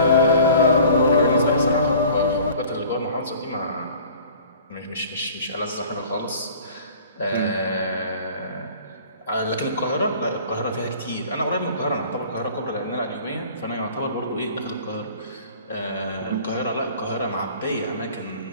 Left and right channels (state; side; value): inverted; both; correlation -0.47